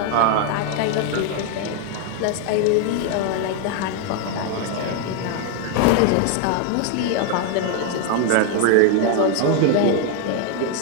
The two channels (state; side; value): different; both; correlation 0.01